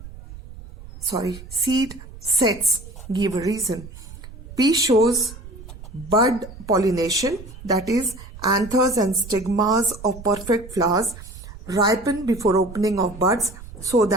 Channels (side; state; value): right; noise; rumble, 15 dB below the sound